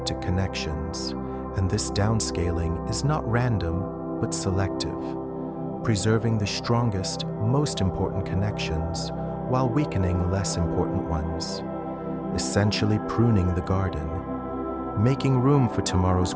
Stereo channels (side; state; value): both; identical; correlation 1.00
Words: connections, and this downscaling is not random but selective, preserving the strongest, most important connections while weakening less important ones, essentially pruning the garden. making room for tomorrow's